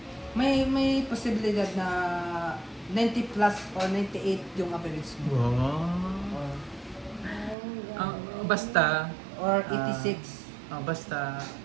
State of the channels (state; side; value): drops out; left; at 7.6 s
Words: may posibilidad na 90 plus or 98 yung average mo. Wow. Basta, Or 86. basta,